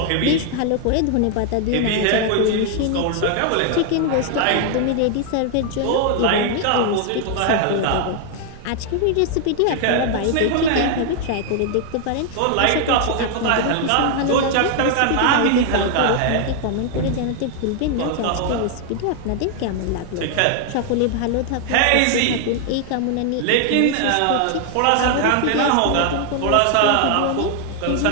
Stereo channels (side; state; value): both; different; correlation 0.00